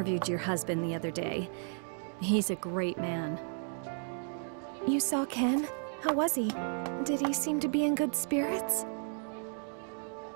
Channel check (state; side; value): silent; left; 55 dB below the other